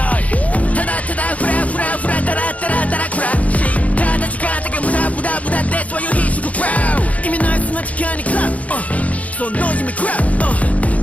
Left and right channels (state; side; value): late; right; 0.068 ms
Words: いただただフラフラフラダラダラダラクラッシュただ時間だけ無駄無駄無駄でそういう必死クラウ意味ないそんな時間にクラッそのノイズにクラ